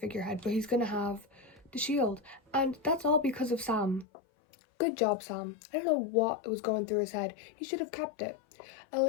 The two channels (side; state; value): right; drops out; at 4.0 s